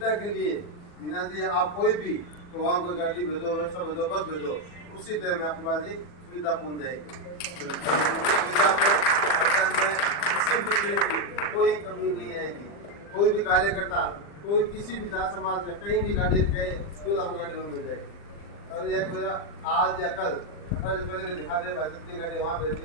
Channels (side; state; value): right; late; 40 ms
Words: के लिए बीना जी आप कोई भी तो वहाँ कोई गाड़ी भेजो, व्यवस्था भेजो, बस भेजो, उसी टाइम में आपके पास ही सुविधा पहुँच जाएगी। सुविधा में किसी भी तरह की कोई कमी नहीं आएगी। कोई भी कार्यकर्ता, कोई किसी भी जात समाज का कहीं भी गाड़ी गए तो आपको गाड़ी में मिल जाएगी। और यह मेरा आज या कल से पहले दिखा दे भाई कितनी गाड़ी वहाँ